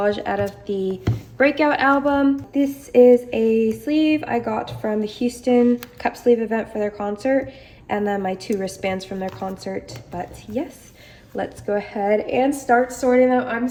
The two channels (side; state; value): both; identical; correlation 1.00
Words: out of the Breakout album. This is a sleeve I got from the Houston cup sleeve event for their concert, and then my 2 wristbands from their concert. But yes, let's go ahead and start sorting them. I'm